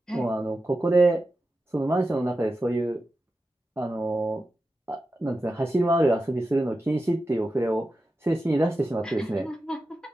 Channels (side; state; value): both; normal; correlation 0.91